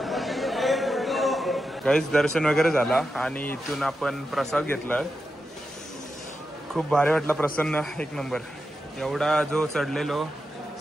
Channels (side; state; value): both; normal; correlation 0.88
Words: काहीच दर्शन वगैरे झाला आणि इथून आपण प्रसाद घेतला. खूप भारी वाटला, प्रसन्न, एक नंबर. एवढा जो चढलेलो